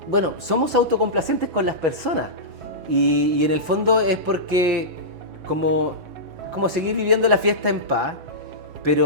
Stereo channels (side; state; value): left; late; 7.6 ms